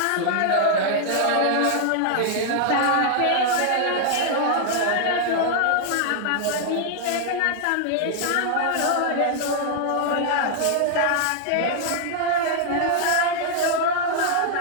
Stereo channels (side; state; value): both; different; correlation 0.00